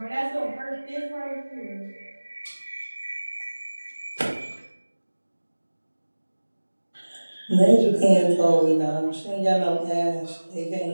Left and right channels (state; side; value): inverted; both; correlation -1.00